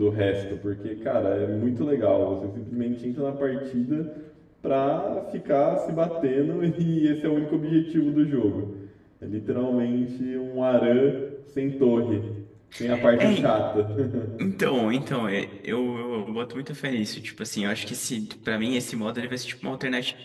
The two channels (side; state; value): both; identical; correlation 1.00